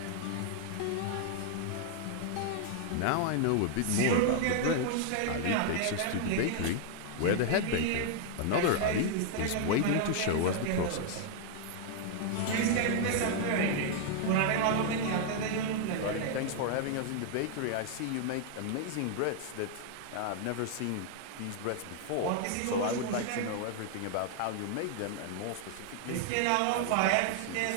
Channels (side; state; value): both; different; correlation 0.00